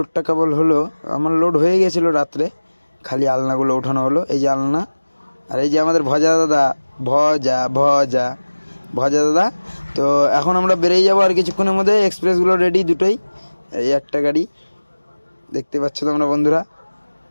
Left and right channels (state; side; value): inverted; both; correlation -1.00